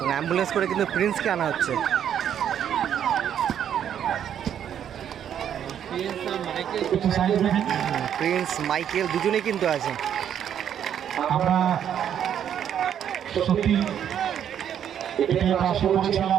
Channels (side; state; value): left; quieter; 9.4 dB